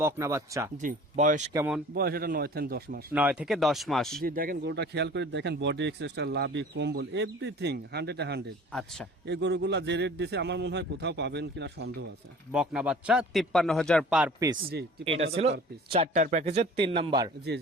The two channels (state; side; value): normal; both; correlation 0.45